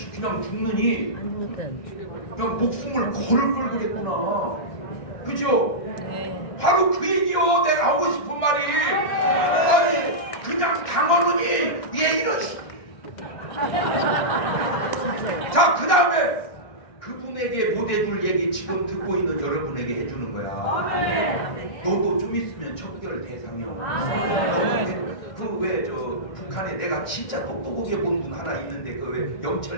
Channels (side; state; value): right; late; 1.6 ms